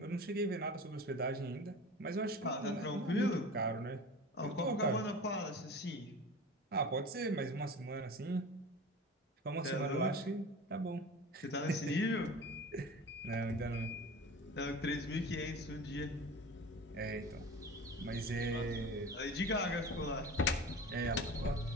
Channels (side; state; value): both; normal; correlation 0.35